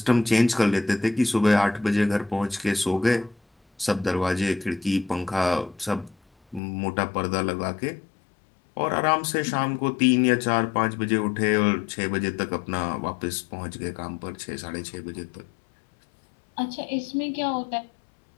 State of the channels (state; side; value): drops out; right; at 6.6 s